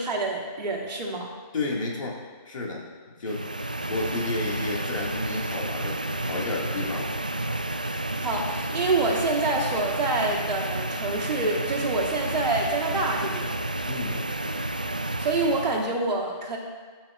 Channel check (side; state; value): both; inverted; correlation -0.35